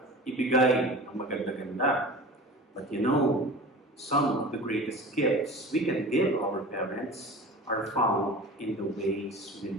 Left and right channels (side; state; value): both; normal; correlation 0.36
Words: ibigay ang maganda-ganda. But you know, some of the greatest gifts we can give our parents are found in the ways we